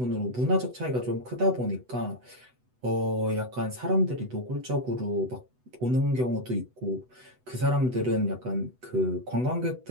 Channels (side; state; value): left; late; 8.0 ms